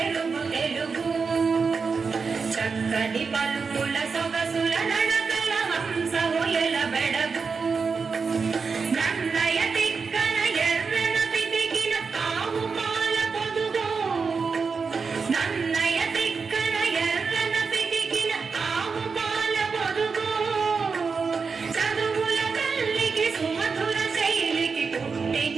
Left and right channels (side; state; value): left; quieter; 5.1 dB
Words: తెలుగు చక్కని పలుకుల సొగసుల నడకల హంస హొయల బెడగు నన్నయ తిక్కన ఎర్రన పితికిన ఆవు పాల పొదుగు నన్నయ తిక్కన ఎర్రన పితికిన ఆవు పాల పొదుగు చదువుల తల్లికి సుమధుర శైలికి పుట్టి